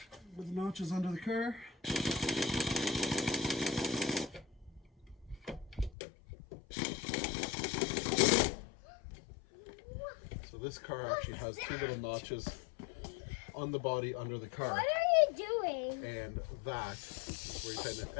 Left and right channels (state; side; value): drops out; right; at 5.9 s